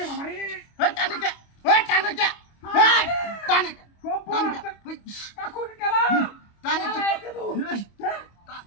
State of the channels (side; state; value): right; late; 25 ms